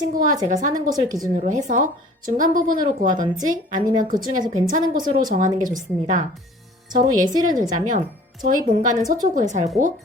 제가 사는 곳을 기준으로 해서 중간 부분으로 구하던지 아니면 그 중에서 괜찮은 곳으로 정하는 게 좋습니다. 저로 예시를 들자면 저희 본가는 서초구에 살고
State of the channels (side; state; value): both; normal; correlation 0.49